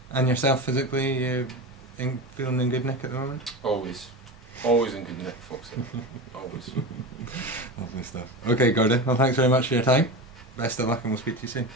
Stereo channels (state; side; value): normal; both; correlation 0.24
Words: And yourself physically, you feeling in good nick at the moment? Always in good nick, Foxy. Always. Lovely stuff. Okay, Gordon. Well, thanks very much for your time. Best of luck, and we'll speak to you soon.